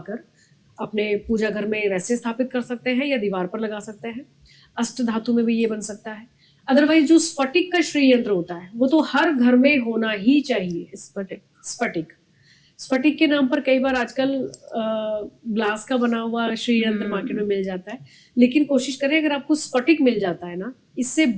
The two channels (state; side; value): identical; both; correlation 1.00